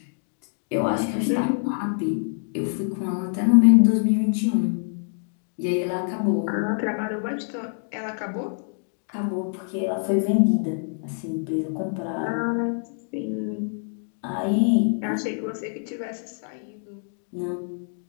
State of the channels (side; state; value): right; silent; digital silence